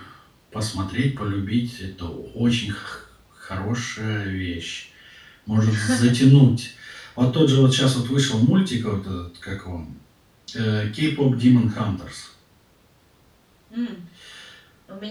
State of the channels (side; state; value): both; identical; correlation 1.00